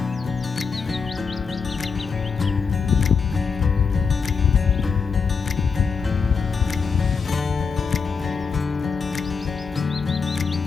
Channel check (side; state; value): right; quieter; 5.5 dB